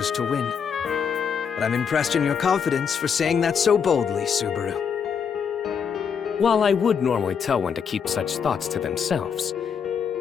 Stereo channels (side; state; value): right; quieter; 6.9 dB